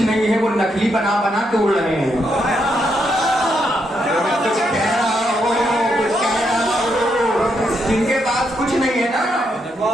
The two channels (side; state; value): both; normal; correlation 0.79